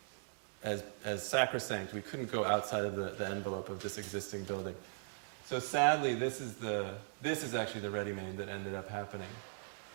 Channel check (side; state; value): left; silent; digital silence